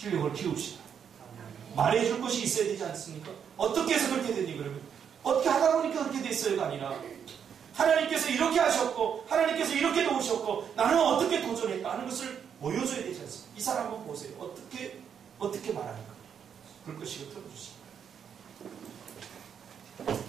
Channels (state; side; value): quieter; left; 7.8 dB